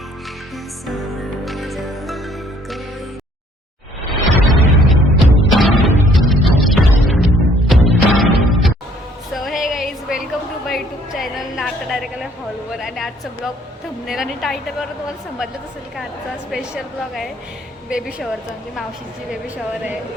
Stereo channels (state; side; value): normal; both; correlation 0.61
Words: to my YouTube channel. नाटक direct आलं हॉलवर आणि आजचा ब्लॉग थंबनेल आणि टायटलवर तुम्हाला समजलंच असेल का आजचा स्पेशल ब्लॉग आहे बेबी शॉवरचा. म्हणजे मावशीची बेबी शॉवर आहे.